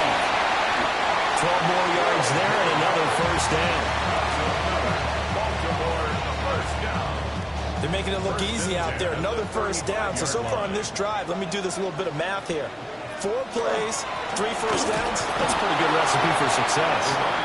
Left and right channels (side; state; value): both; identical; correlation 1.00